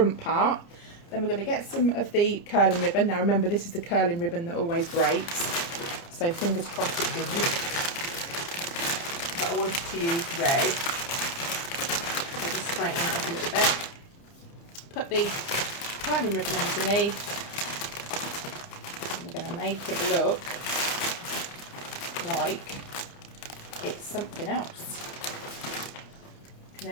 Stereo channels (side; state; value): right; late; 29 ms